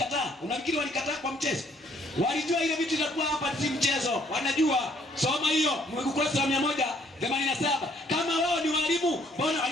Unafikiri walikataa kwa mchezo? Walijua ile vitu inakuwa hapa si mchezo. Wanajua. Soma hiyo ukurasa wa 187. Kama wao ni walimu, mbona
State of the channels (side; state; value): both; normal; correlation 0.64